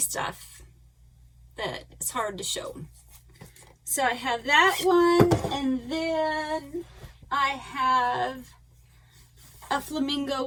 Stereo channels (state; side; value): identical; both; correlation 1.00